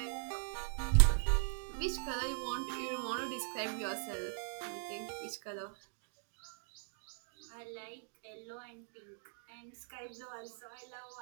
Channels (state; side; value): silent; left; digital silence